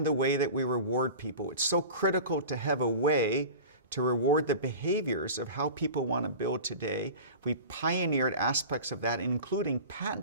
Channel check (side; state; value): both; inverted; correlation -0.34